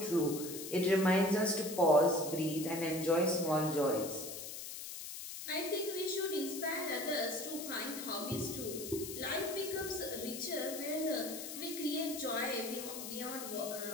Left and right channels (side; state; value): left; noise; hiss, 8 dB below the sound